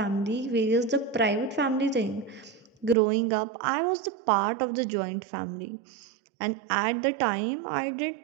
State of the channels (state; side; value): drops out; left; at 3.0 s